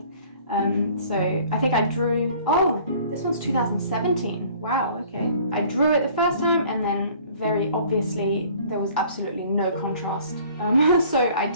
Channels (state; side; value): inverted; both; correlation -0.52